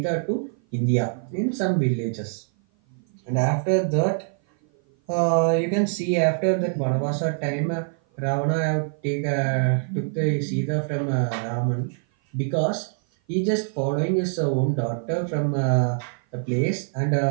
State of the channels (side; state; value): left; silent; 56 dB below the other